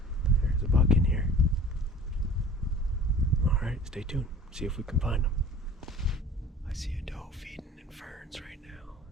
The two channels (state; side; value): normal; both; correlation 0.44